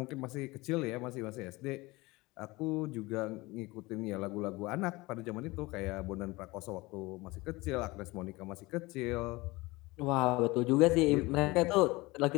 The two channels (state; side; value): quieter; right; 22.1 dB